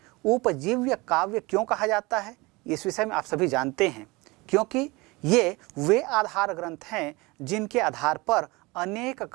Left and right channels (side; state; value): left; quieter; 23.9 dB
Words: उपजीव्य काव्य क्यों कहा जाता है, इस विषय में आप सभी जानते हैं, क्योंकि ये वे आधार ग्रंथ हैं जिनके आधार पर अनेक